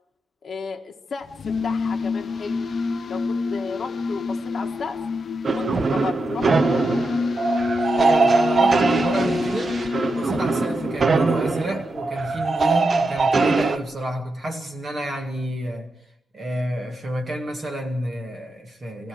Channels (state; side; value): normal; both; correlation 0.86